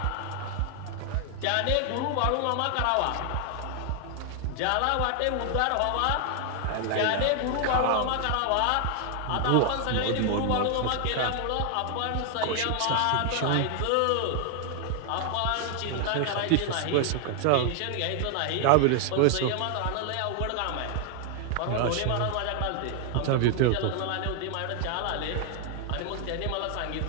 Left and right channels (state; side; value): different; both; correlation 0.00